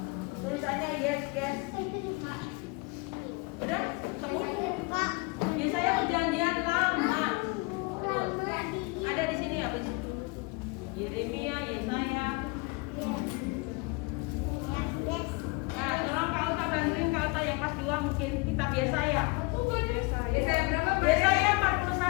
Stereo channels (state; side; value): quieter; right; 27.5 dB